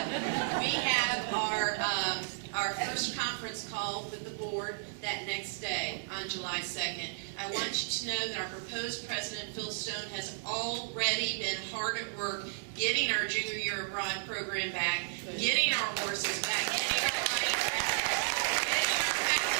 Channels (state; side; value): silent; left; digital silence